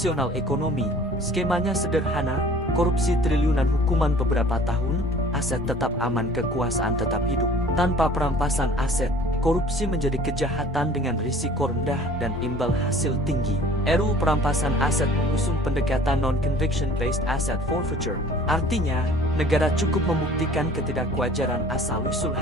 ekonomi, skemanya sederhana, korupsi triliunan, hukuman beberapa tahun, aset tetap aman, kekuasaan tetap hidup. Tanpa perampasan aset, korupsi menjadi kejahatan dengan risiko rendah dan imbal hasil tinggi. RUU Perampasan Aset mengusung pendekatan non-conviction based asset forfeiture. Artinya, negara cukup membuktikan ketidakwajaran asal-usul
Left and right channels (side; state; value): both; normal; correlation 0.49